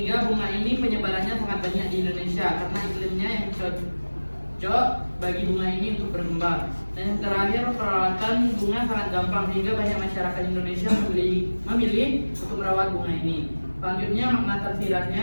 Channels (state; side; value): inverted; both; correlation -1.00